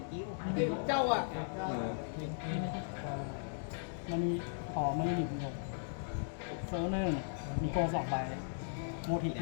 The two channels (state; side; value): silent; right; digital silence